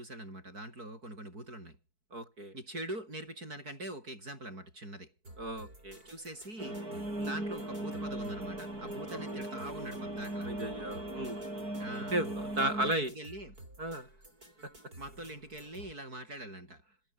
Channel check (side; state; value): left; late; 4.6 ms